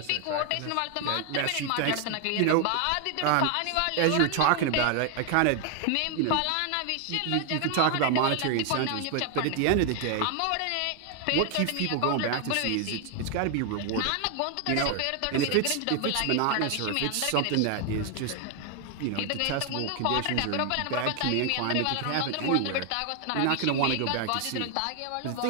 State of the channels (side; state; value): both; different; correlation 0.00